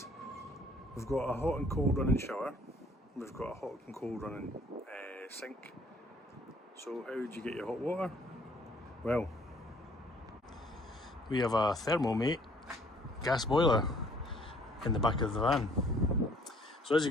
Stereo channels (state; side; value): normal; both; correlation 0.59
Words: we've got a hot and cold running shower, we've got a hot and cold running sink. So how do you get your hot water? Well, we have a Thermomate gas boiler in the back of the van. So as you